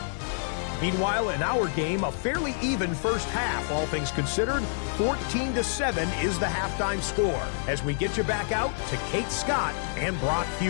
Meanwhile, in our game, a fairly even first half, all things considered. 14-7 is the halftime score as we get you back out to Kate Scott and Brock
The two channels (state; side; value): silent; right; digital silence